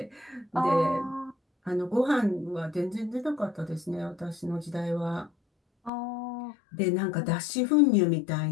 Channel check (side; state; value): right; drops out; at 5.9 s